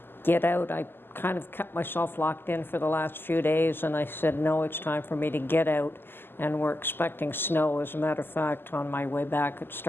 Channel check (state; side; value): late; right; 0.10 ms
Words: get out. I kind of kept myself locked in for the last few days, and I said, no, it's time for me to get out. And we're expecting snow. As a matter of fact, on my way back, it